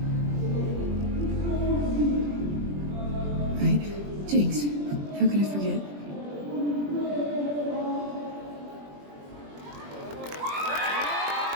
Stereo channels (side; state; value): left; late; 21 ms